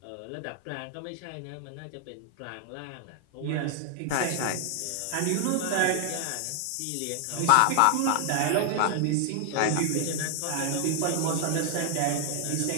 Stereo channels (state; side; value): different; both; correlation 0.00